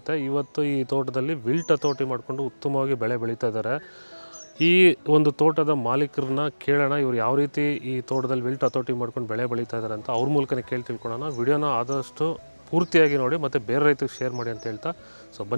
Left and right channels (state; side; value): inverted; both; correlation -1.00